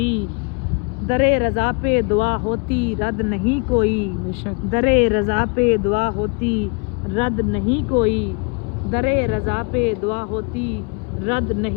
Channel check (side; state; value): right; quieter; 34.6 dB